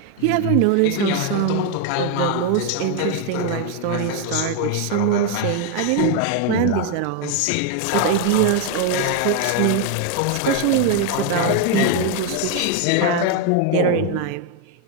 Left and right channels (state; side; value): different; both; correlation 0.01